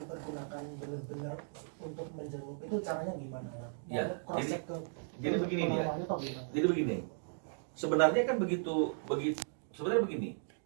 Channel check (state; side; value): silent; left; digital silence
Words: dipergunakan benar-benar untuk menjenguk, itu caranya gimana ya? Ya, jadi begini dia. Jadi begini. Sebenarnya kan sebenarnya begini.